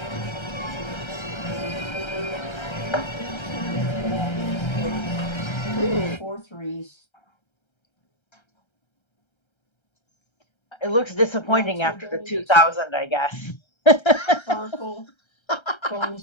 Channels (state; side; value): late; right; 1.3 ms